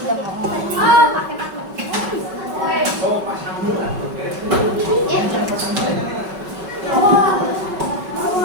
mau. Oh, pasang dulu.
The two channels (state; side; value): late; left; 5.3 ms